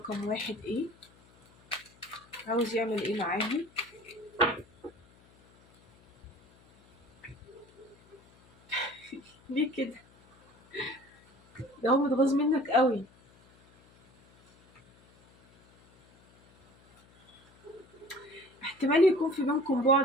واحد ايه؟ عاوز يعمل ايه معاهم؟ ليه كده؟ ده هو متغاظ منك قوي. احتمال يكون في بينكم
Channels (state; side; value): noise; left; hum, 28 dB below the sound